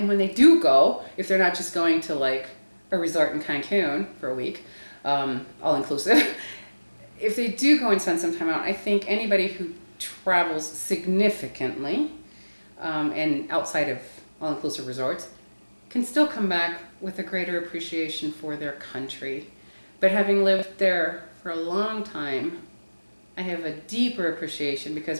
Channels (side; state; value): both; inverted; correlation -1.00